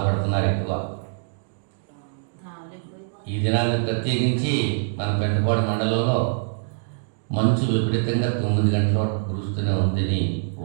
ఎక్కువ. ఈ దినాన్ని ప్రత్యేకించి మన పెంటపాడు మండలంలో మంచు విపరీతంగా 9 గంటల వరకు కురుస్తూనే ఉందని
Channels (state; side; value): silent; left; digital silence